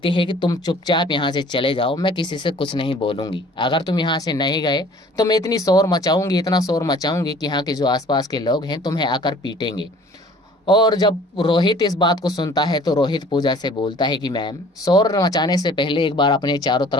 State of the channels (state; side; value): normal; both; correlation 0.51